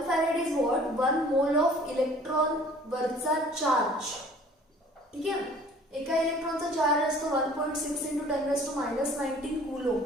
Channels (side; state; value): both; normal; correlation 0.51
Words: farad is what, 1 mole of electron वरचा चार्ज. ठीक आहे, एका इलेक्ट्रॉनचा चार्ज असतो 1.6 × 10⁻⁻19 कूलोम.